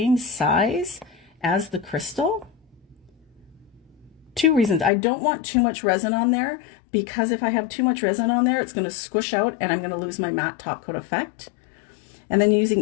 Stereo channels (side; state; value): right; drops out; at 4.9 s